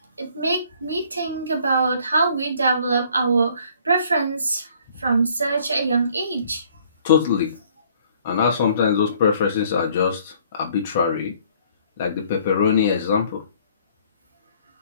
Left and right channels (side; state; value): both; inverted; correlation -0.60